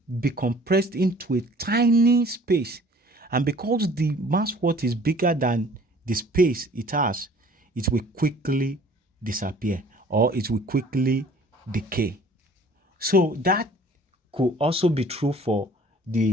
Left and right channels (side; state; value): both; normal; correlation 0.52